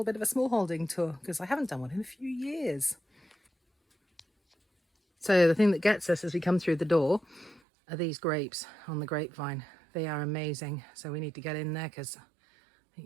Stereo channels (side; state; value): left; drops out; at 7.6 s